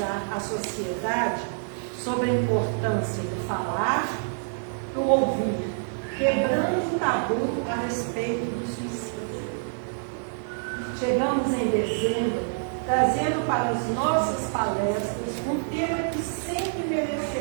a sociedade sobre a importância do falar, do ouvir, quebrando o tabu a respeito do suicídio. Chegamos em dezembro, trazendo para as nossas palestras um tema que sempre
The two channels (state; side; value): silent; left; digital silence